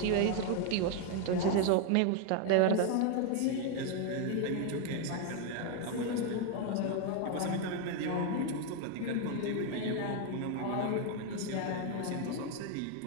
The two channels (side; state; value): both; different; correlation 0.01